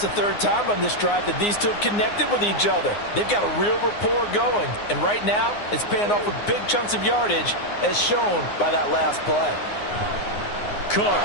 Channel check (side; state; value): right; late; 9.7 ms